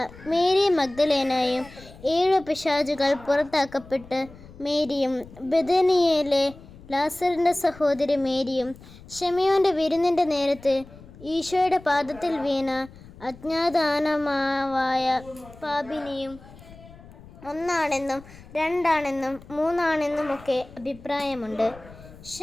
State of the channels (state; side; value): noise; left; rumble, 20 dB below the sound